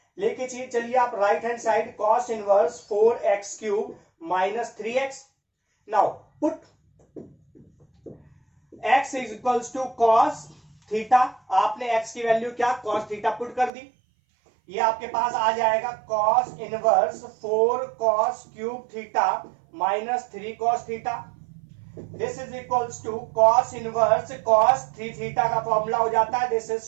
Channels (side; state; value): left; drops out; at 13.7 s